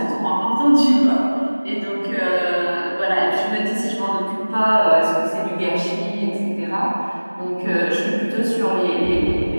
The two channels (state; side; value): inverted; both; correlation -1.00